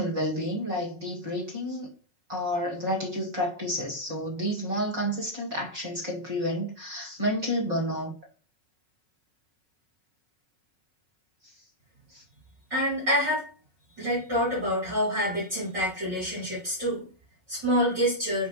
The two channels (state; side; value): late; left; 5.4 ms